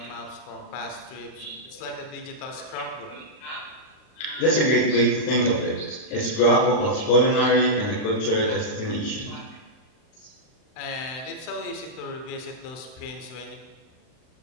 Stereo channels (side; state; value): right; late; 38 ms